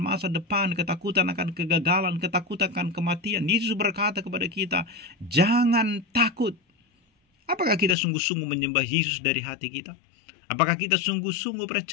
masa depan, ketakutan akan kegagalan, ketakutan akan kematian, Yesus berkata kepada kita, jangan takut. Apakah kita sungguh-sungguh menyembah Yesus dari hati kita? Apakah kita sungguh-sungguh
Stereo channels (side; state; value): right; drops out; at 8.0 s